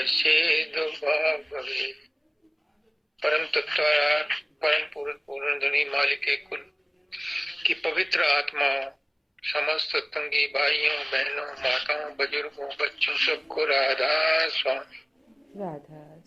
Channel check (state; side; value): identical; both; correlation 1.00